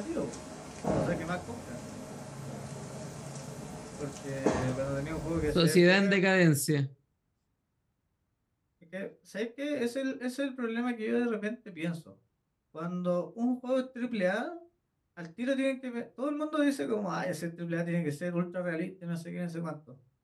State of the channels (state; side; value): identical; both; correlation 1.00